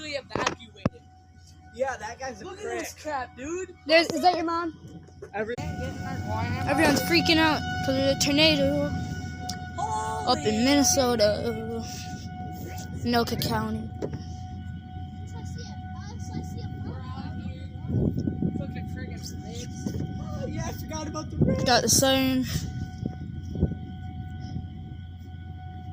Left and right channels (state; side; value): identical; both; correlation 1.00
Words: evacuated. Yeah, that guy's a Look prick. At this crap, dude. Is that your mom? Everyone's freaking out because of the tornado up in Minnesota, Anoka County. Oh, yeah, I forgot about the rain. Got the siren.